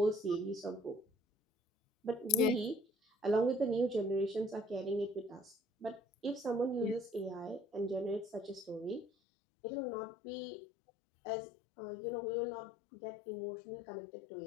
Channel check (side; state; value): right; drops out; at 9.1 s